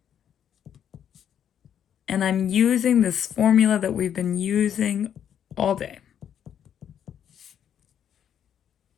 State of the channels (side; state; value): right; quieter; 9.1 dB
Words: And I'm using this formula that we've been using all day.